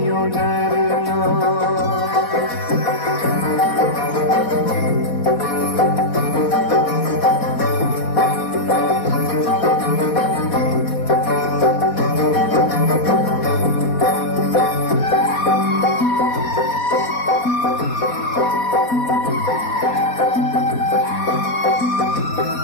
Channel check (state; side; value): late; right; 4.2 ms